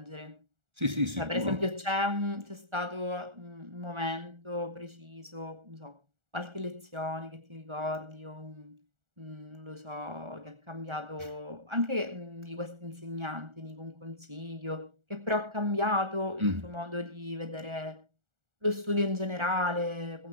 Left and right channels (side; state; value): left; late; 1.4 ms